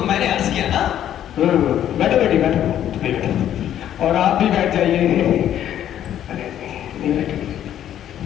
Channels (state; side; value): quieter; right; 10.9 dB